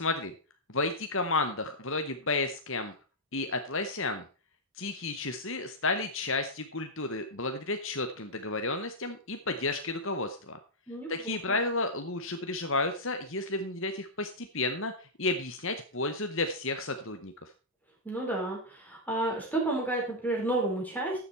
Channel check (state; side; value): normal; both; correlation -0.07